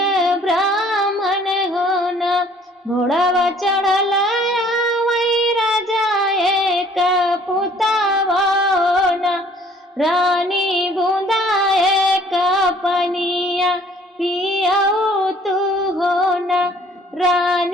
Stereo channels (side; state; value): both; normal; correlation 0.57